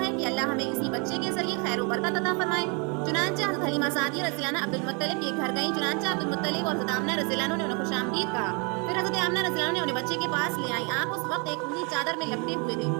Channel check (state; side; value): quieter; left; 33.4 dB